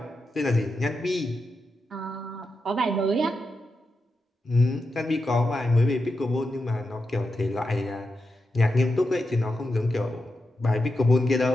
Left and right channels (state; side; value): normal; both; correlation 0.88